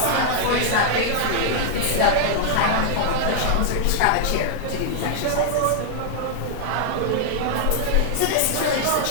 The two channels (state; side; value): different; both; correlation 0.00